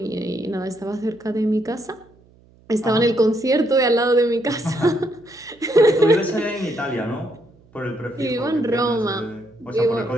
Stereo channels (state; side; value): noise; right; hum, 29 dB below the sound